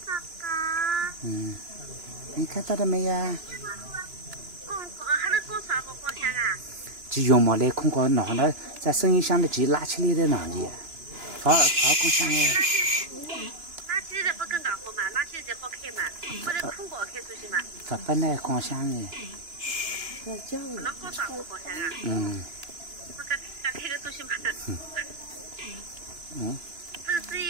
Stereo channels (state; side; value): late; left; 2.9 ms